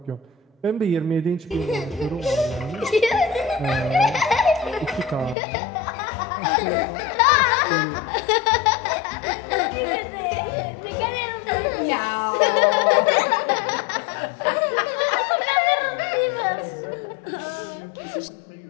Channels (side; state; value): right; drops out; at 5.4 s